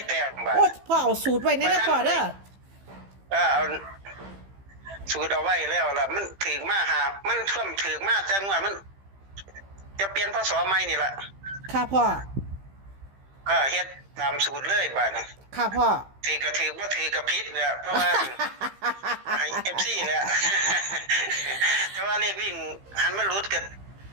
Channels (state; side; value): late; left; 15 ms